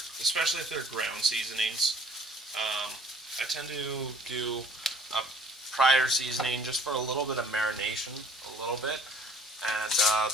especially if they're ground seasonings. I tend to do a prior seasoning just for a little bit of marination, a little bit, and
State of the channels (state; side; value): normal; both; correlation 0.54